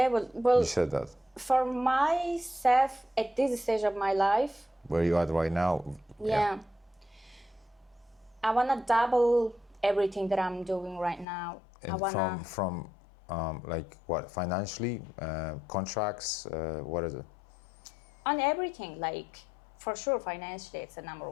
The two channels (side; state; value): right; drops out; at 11.2 s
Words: well, you said that. For myself, at this stage of my life, where you are right now, I want to double everything that I'm doing right now. And I wanna from like what, financially, contracts, what is it? On everything, like, for sure, financially, it's the number